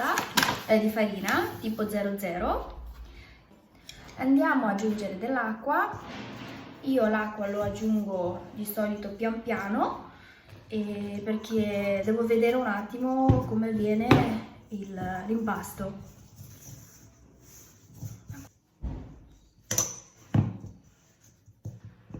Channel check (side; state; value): both; identical; correlation 1.00